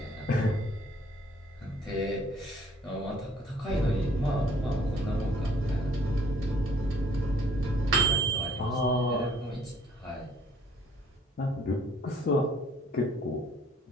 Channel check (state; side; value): normal; both; correlation 0.59